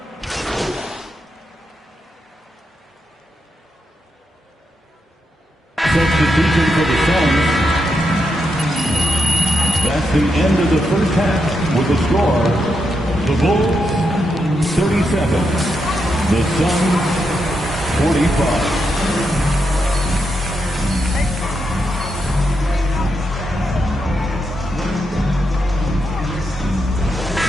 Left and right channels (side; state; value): both; normal; correlation 0.83